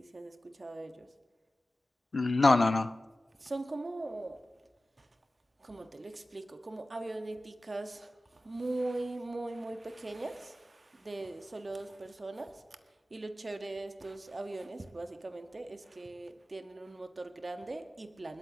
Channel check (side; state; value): both; normal; correlation 0.95